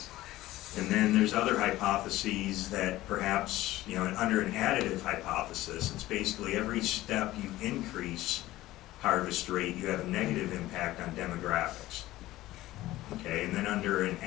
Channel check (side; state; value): right; quieter; 16.4 dB